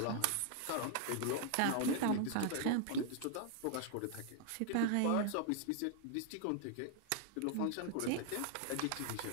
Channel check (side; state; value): both; different; correlation 0.00